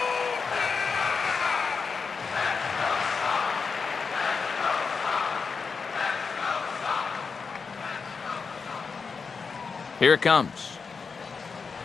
Here it comes.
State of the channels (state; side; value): quieter; right; 5.2 dB